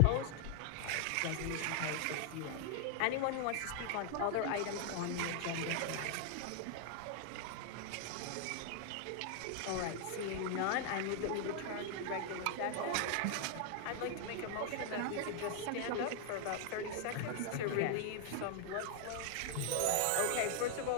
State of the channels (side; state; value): both; different; correlation 0.00